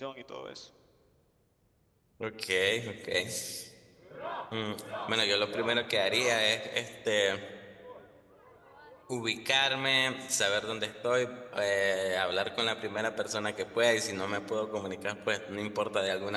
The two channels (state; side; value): identical; both; correlation 1.00